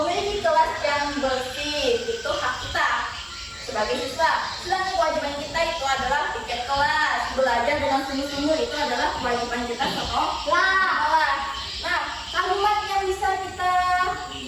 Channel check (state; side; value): identical; both; correlation 1.00